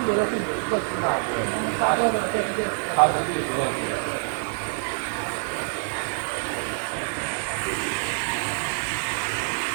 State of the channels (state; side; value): silent; left; digital silence